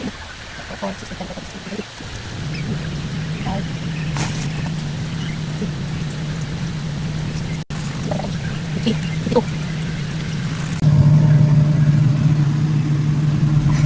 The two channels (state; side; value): identical; both; correlation 1.00